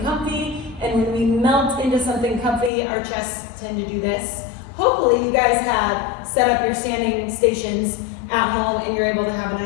and when we melt into something comfy, our chests tend to do this. Hopefully you guys have set up your standing stations at home and you're able to have a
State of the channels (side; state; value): right; drops out; at 2.7 s